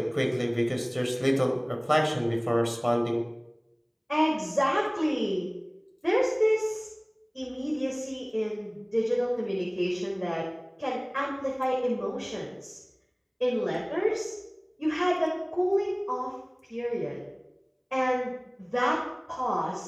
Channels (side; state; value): both; identical; correlation 1.00